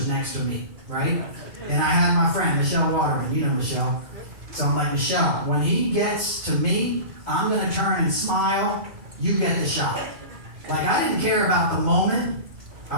next to me, right? And I had my friend, Michelle Waterman. You know Michelle. So I'm like, Michelle, when he gets to me, I'm going to turn and smile. You get the shot. Like, I didn't care about the moment.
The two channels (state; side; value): late; left; 2.3 ms